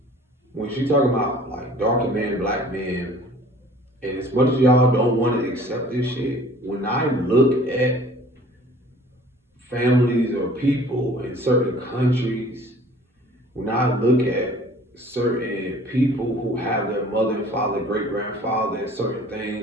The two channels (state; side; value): normal; both; correlation 0.49